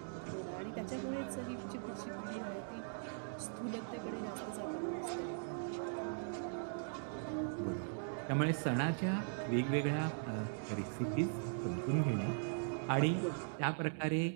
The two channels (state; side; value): silent; left; digital silence